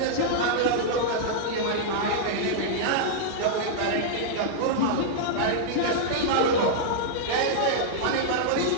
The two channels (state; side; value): different; both; correlation -0.02